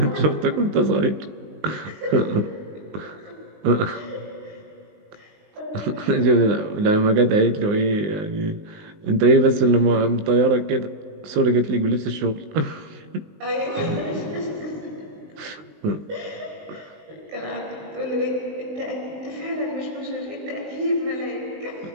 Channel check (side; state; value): left; late; 19 ms